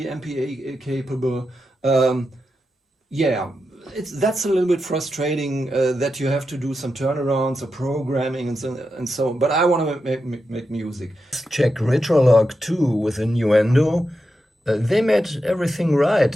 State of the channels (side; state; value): both; normal; correlation 0.88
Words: MPE capable. Yeah, that's a little bit frustrating that you have to do some turnarounds or programming and so. But I want to make music. Check Retrolog 2 with a Nuendo. They made everything right